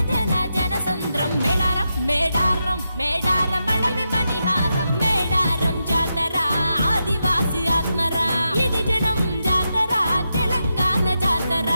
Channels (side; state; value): both; inverted; correlation -0.86